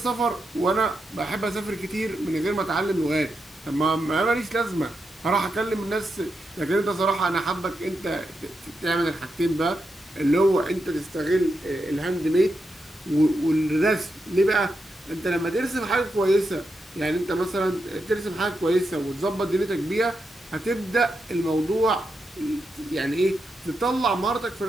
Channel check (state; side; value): normal; both; correlation 0.85